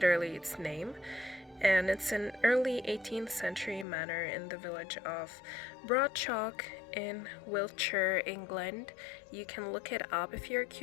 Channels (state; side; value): drops out; right; at 3.9 s